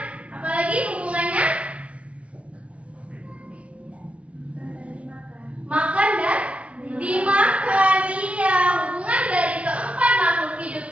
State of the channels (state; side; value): late; left; 0.063 ms